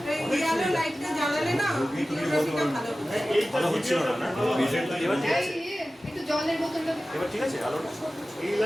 একটু জলের বোতলটা ঠিক আছে আলোটা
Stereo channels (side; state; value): both; normal; correlation 0.96